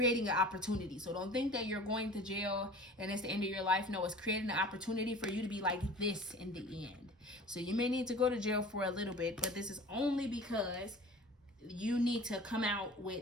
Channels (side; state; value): both; normal; correlation 0.42